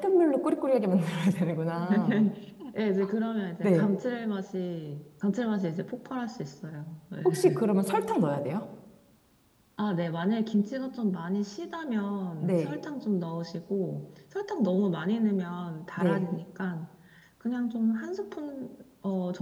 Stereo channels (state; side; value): identical; both; correlation 1.00